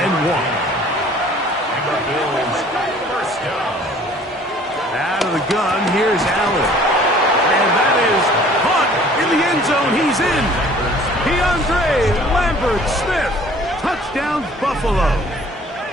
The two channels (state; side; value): normal; both; correlation 0.52